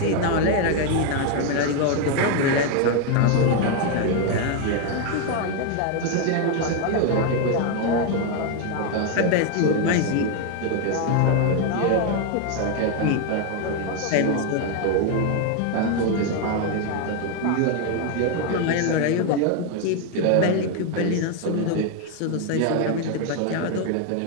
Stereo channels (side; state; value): both; different; correlation 0.01